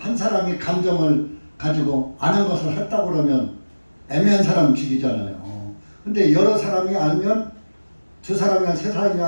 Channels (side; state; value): both; inverted; correlation -1.00